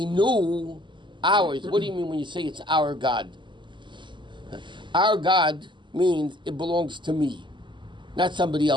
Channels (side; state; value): left; late; 0.23 ms